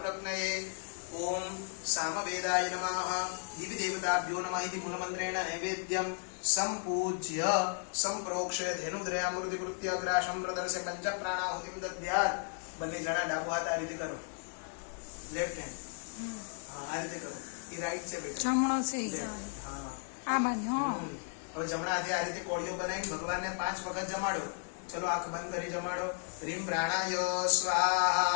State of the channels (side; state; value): right; silent; 55 dB below the other